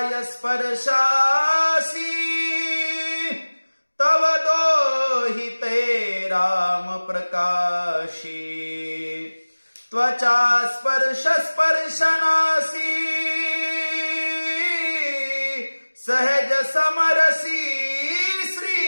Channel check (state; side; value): inverted; both; correlation -1.00